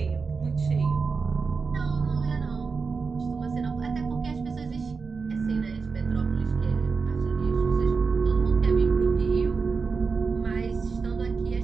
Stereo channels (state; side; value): quieter; left; 4.9 dB